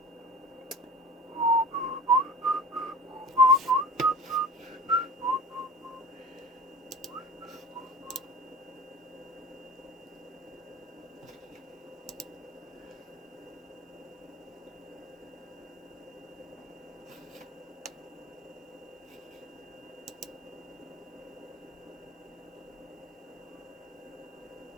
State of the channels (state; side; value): normal; both; correlation 0.38